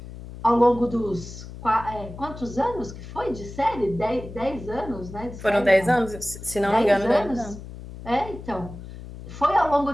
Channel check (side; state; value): left; noise; hum, 13 dB below the sound